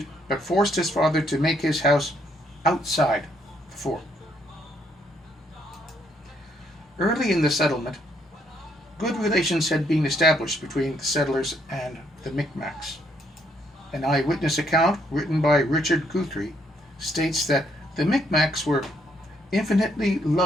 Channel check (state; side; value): normal; both; correlation 0.72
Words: but forced his father to make his house outside the fort. Early in the settlement, good relations had been established between the settlers and the Micmacs. An eyewitness account written by Richard Guthrie states that the Micmacs were infinitely